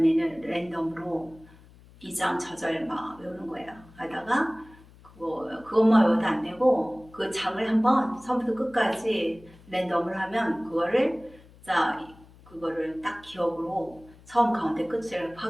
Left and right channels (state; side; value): noise; left; hum, 24 dB below the sound